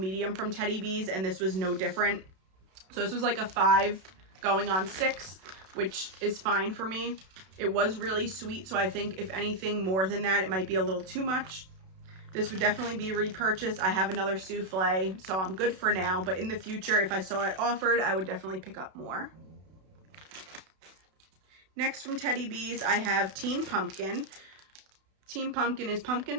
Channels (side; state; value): left; late; 32 ms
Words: from Teddy Bees, and this was no different. So this was like a 5 going on 6, which is fine for me. It was really sweet, so I think if anything more than that, it might be a little too much. This would definitely be repurchased. I have another souffle, so I'm good for now, but in the future, if I saw it offered, I would definitely pick up more. Next from Teddy Bees, I have Teen Pumpkin. Teen Pumpkin is